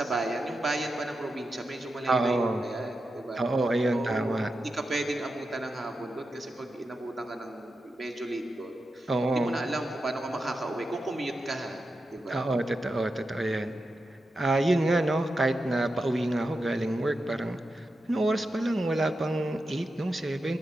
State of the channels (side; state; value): both; normal; correlation 0.89